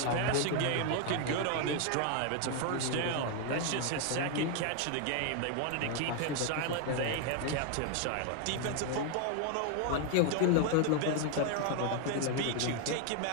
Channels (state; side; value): different; both; correlation 0.01